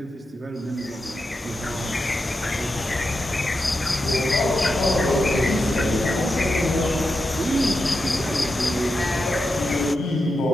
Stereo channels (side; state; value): both; normal; correlation 0.88